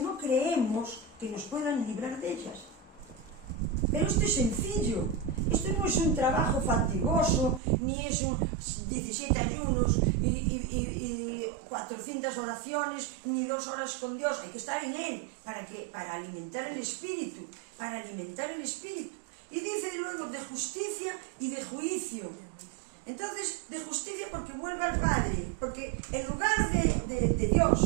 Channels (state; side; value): drops out; left; at 7.6 s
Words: creemos que nos puedan librar de ellas. Pero esto es sencillo, esto no es un trabajo fatigoso, ni es un 17 ayunos y 400 oraciones, ni 2 horas con Dios. Hay que estar en Él, para alimentar el espíritu, Y dice luego de justicia y de juicio. Entonces, de justicia porque vuelve al Padre, porque el lugar de